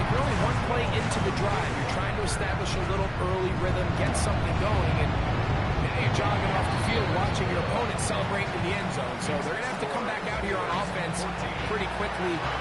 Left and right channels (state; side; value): identical; both; correlation 1.00